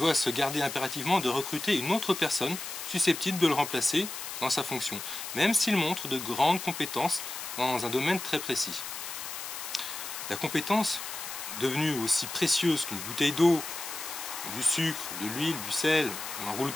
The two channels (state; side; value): noise; left; hiss, 8 dB below the sound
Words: se garder impérativement de recruter une autre personne susceptible de le remplacer dans sa fonction, même s'il montre de grandes compétences dans un domaine très précis. La compétence, devenue aussi précieuse qu'une bouteille d'eau, du sucre, de l'huile, du sel ou un rouleau de